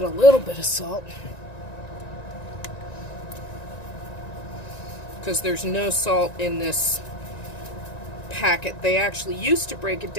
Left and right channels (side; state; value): right; late; 1.9 ms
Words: a little bit of salt. Because there's no salt in this packet. They actually used to break it